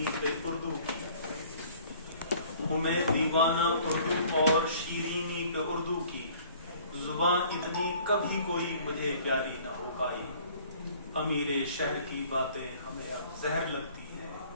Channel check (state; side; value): inverted; both; correlation -0.54